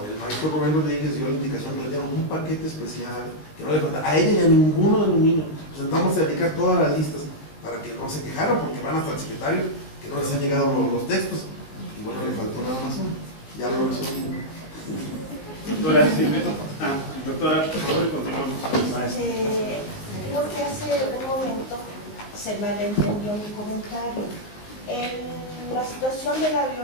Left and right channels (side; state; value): right; late; 19 ms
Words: el maestro Rubén Rodríguez dio la indicación que le dieron un paquete especial, que no le faltaba a ella y a ninguno de los niños. Nos sentamos a dedicar todas las listas para que no se quejaran, porque van hasta el secretario, que no les han llegado los textos. Y bueno, le faltó nada más uno. Ya lo resolvimos. Doctora Silvia. Doctora, por favor, continuamos. Creo que hace un momento se malentendió mi comentario. La situación de la